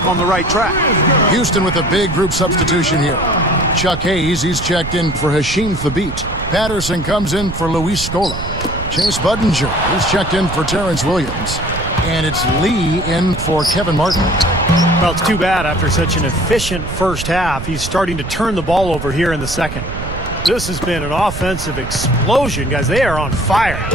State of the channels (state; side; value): noise; right; rumble, 8 dB below the sound